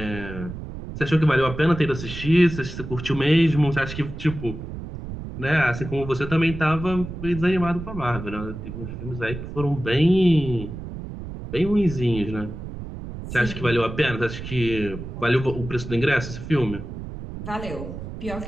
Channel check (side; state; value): right; noise; rumble, 9 dB below the sound